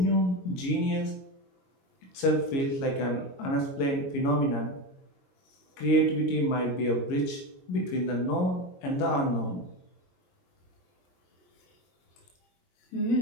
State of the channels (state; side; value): late; right; 22 ms